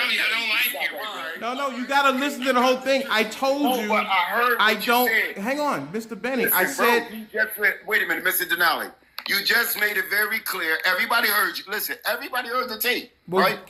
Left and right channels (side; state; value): both; identical; correlation 1.00